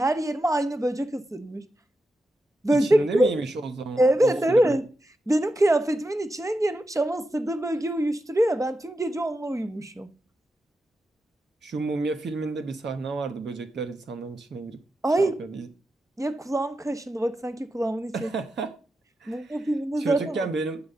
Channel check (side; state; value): both; normal; correlation 0.88